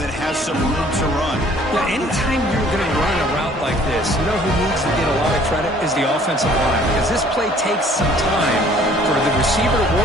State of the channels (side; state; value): both; normal; correlation 0.56